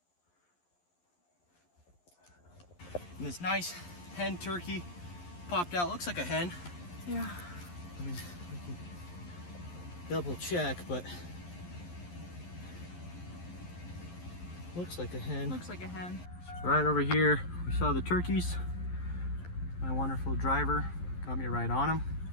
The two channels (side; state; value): right; late; 11 ms